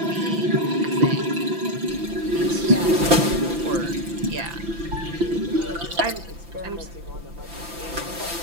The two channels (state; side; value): late; left; 5.9 ms